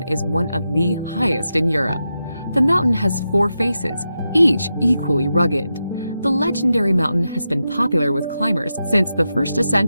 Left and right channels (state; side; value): inverted; both; correlation -0.89